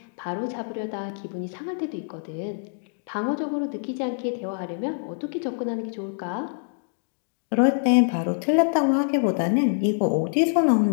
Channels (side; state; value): right; silent; digital silence